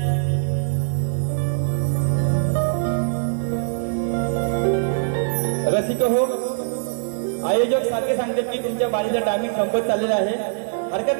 रसिक हो आयोजक सारखे सांगतात की तुमच्या बारीचा टायमिंग संपत चाललेला आहे हरकत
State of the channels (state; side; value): silent; left; digital silence